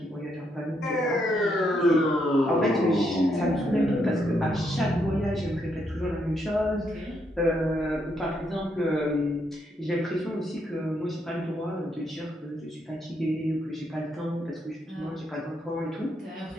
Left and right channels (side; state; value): both; normal; correlation 0.77